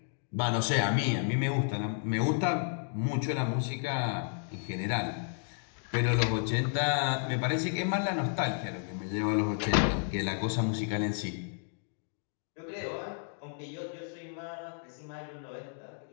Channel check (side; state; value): right; silent; 56 dB below the other